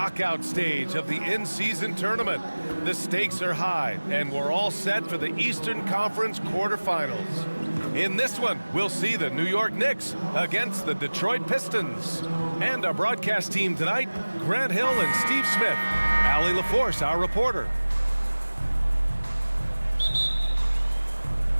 stage of the in-season tournament. The stakes are high, and we're all set for the Eastern Conference quarterfinals. In this one, we'll see the New York Knicks against the Detroit Pistons. And our broadcast team tonight, Grant Hill and Steve Smith. Allie LaForce, our reporter.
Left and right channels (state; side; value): inverted; both; correlation -1.00